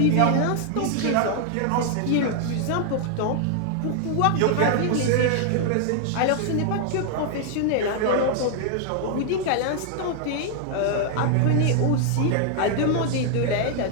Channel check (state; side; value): different; both; correlation 0.00